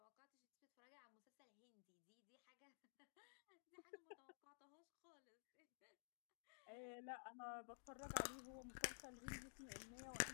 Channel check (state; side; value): silent; right; digital silence